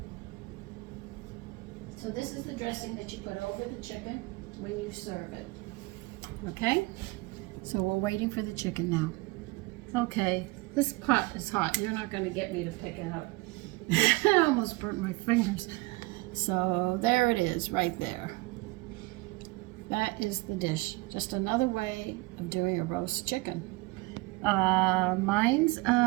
So this is the dressing that you put over the chicken when you serve it. Okay? So we're waiting for the chicken now. Okay, this pot is hot. You're not going to get me to pick it up. I almost burnt my fingers. So there it is, right there. That is the dish. Just another way of doing a roast chicken. Mine's,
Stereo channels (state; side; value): quieter; left; 23.7 dB